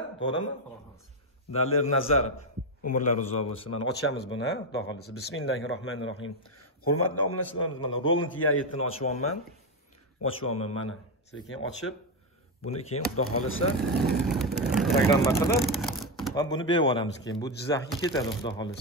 to'g'rimi? Dalir Nazarov, umrlar uzoq bo'lsin. Mana ochamiz buni, xudo xolasa. Bismillahirrohmanirrohim. Hurmatli obunachilarimiz, mana Roland E7 ni ochyapman mana. Sekin ochib, buni keyin xudo xolasa programma qilib va buni berib yuboramiz keyin. Bu Jizzaxga ketadi xudo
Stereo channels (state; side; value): normal; both; correlation 0.07